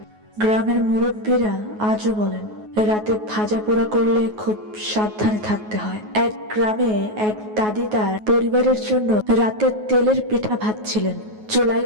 গ্রামের মুরব্বীরা আজও বলেন, রাতে ভাজা পোড়া করলে খুব সাবধানে থাকতে হয়। এক গ্রামে এক দাদি তার পরিবারের জন্য রাতে তেলের পিঠা ভাজছিলেন। চুলায়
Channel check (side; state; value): left; late; 9.4 ms